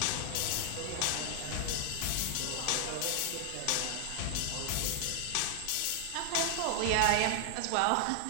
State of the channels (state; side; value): different; both; correlation 0.00